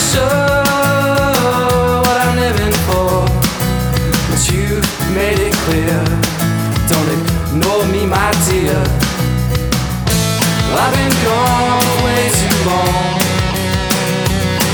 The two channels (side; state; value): both; identical; correlation 1.00